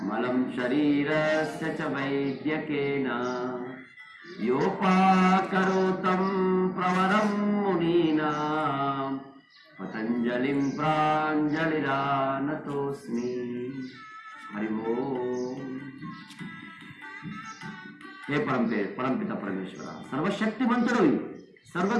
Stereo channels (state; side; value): identical; both; correlation 1.00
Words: मलं शरीरस्य च वैद्यकेन योपाकरोतं प्रवरं मुनीनां पतञ्जलिं प्राञ्जलिरानतोऽस्मि. हरि ओम्. हे परमपिత పరమేశ్వర, సర్వశక్తిమంతుడివి,